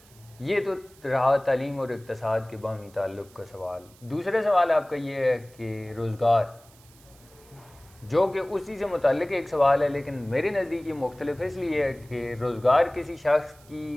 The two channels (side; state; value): right; noise; hiss, 27 dB below the sound